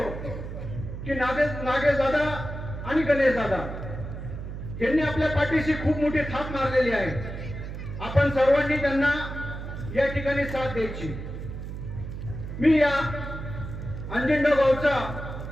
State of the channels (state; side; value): noise; right; hum, 8 dB below the sound